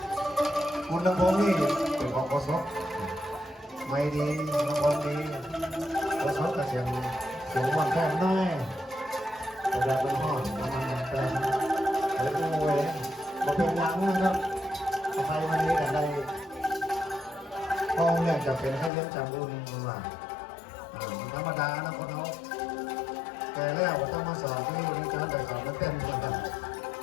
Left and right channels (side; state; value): right; drops out; at 18.9 s